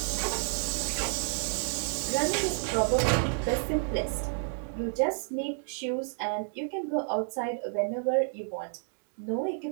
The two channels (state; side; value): silent; left; 58 dB below the other